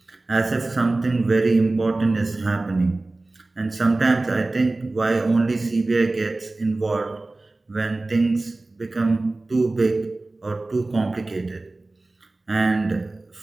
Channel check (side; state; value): left; quieter; 3.1 dB